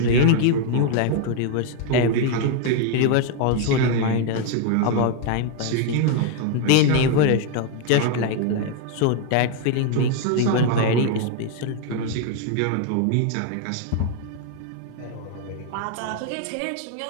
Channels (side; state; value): both; different; correlation 0.00